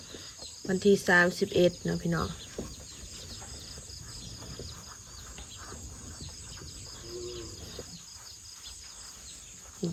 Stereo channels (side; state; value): both; identical; correlation 1.00